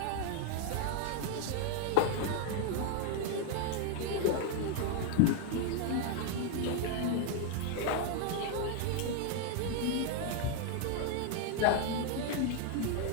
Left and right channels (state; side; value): different; both; correlation 0.00